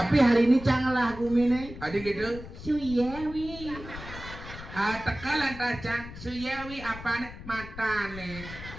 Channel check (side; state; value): left; noise; rumble, 13 dB below the sound